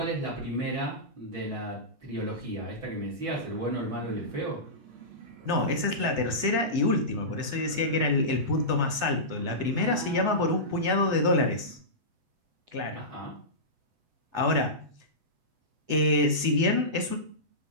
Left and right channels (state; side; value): late; left; 8.2 ms